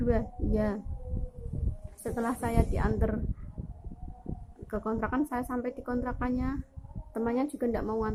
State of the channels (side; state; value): both; identical; correlation 1.00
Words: Iya. Setelah saya diantar ke kontrakan, saya sampai di kontrakannya, temannya juga nggak mau